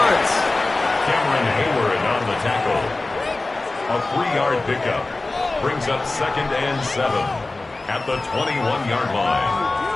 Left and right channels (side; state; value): right; quieter; 3.2 dB